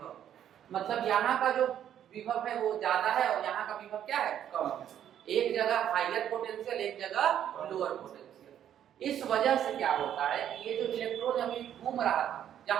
मतलब यहाँ का जो विभव है वो ज्यादा है और यहाँ का विभव क्या है, कम है। एक जगह हायर पोटेंशियल, एक जगह लोअर पोटेंशियल। इस वजह से क्या होता है कि ये जो इलेक्ट्रॉन अभी घूम रहा था,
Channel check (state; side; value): quieter; left; 10.2 dB